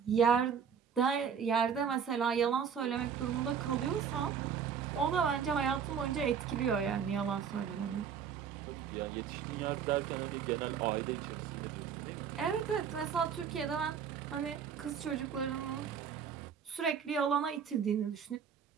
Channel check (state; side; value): quieter; left; 7.3 dB